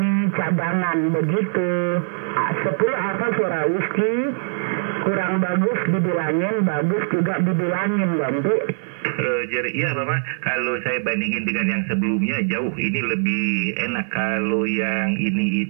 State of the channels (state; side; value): silent; left; 57 dB below the other